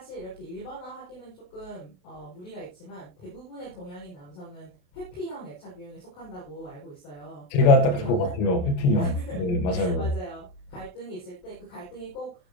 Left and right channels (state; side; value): late; right; 28 ms